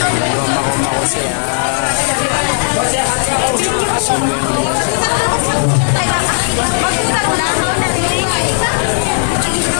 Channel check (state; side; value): silent; right; digital silence